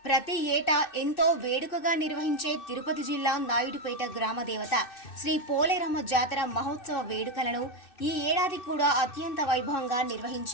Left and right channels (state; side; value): late; right; 2.6 ms